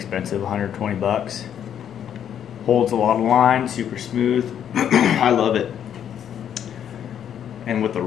120 bucks. Holds a lot of line, super smooth. I love it. And with the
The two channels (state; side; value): quieter; right; 9.3 dB